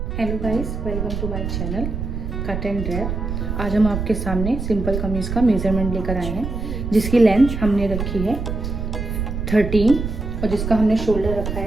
Hello guys, welcome to my channel cut and drape. आज हम आपके सामने सिंपल कमीज़ का मेज़रमेंट लेकर आए हैं, जिसकी लेंथ हमने रखी है 13 और जिसका हमने शोल्डर रखा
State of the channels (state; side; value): noise; right; rumble, 4 dB below the sound